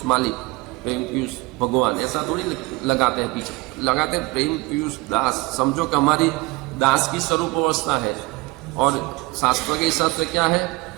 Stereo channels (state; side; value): quieter; left; 23.4 dB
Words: मालिक, प्रेम पीयूष भगवान, ऐसा थोड़ी लगाते हैं, पीछे लगाते हैं प्रेम पीयूष दास। समझो कि हमारी दास की स्वरूप अवस्था है। और शास्त्र के हिसाब से क्या है